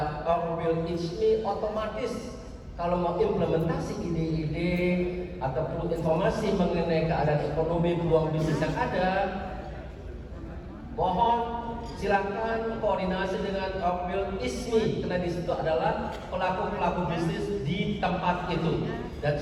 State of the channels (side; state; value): both; identical; correlation 1.00